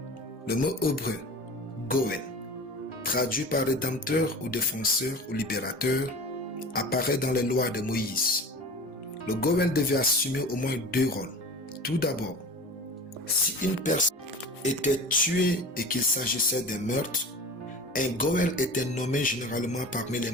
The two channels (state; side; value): normal; both; correlation 0.35